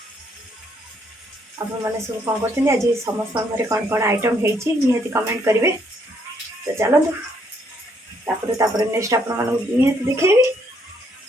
आपण मैंने सब कौन कर आज समस्त घर कौन कौन आइटम होती निहती कमेंट करेंगे। तो चलतु तापर नेक्स्ट आप निहती देखेबी।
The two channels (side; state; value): both; normal; correlation 0.70